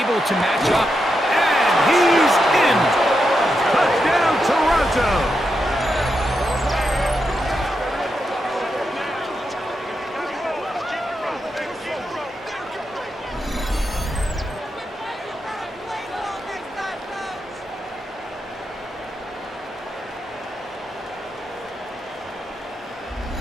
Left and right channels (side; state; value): both; normal; correlation 0.85